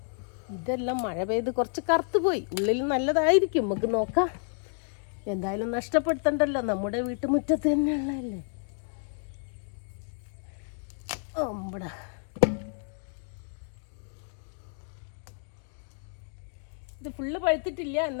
ഇതെല്ലാം മഴ പെയ്ത് കുറച്ച് കറുത്തു പോയി. ഉള്ളിൽ നല്ലതായിരിക്കും, നമുക്ക് നോക്കാം. എന്തായാലും നഷ്ടപ്പെടുത്തണ്ടല്ലോ, നമ്മുടെ വീട്ടുമുറ്റത്ത് തന്നെയുള്ളതല്ലേ. ഓമ്പടാ, ഇത് ഫുള്ള് പഴുത്തിട്ടില്ല,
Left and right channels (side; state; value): right; silent; 58 dB below the other